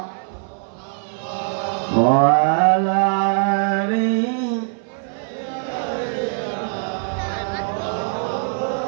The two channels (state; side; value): silent; left; 58 dB below the other